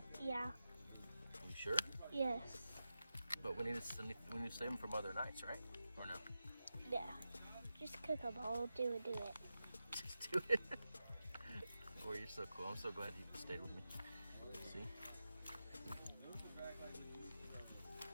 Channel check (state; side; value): inverted; both; correlation -0.91